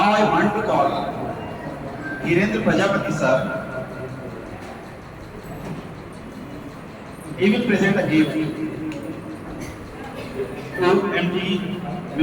I want to call Hirendra Prajapati sir. He will present a gift to MT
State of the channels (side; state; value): both; identical; correlation 1.00